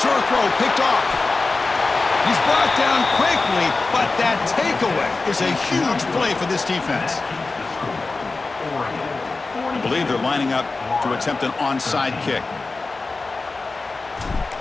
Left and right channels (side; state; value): right; quieter; 3.7 dB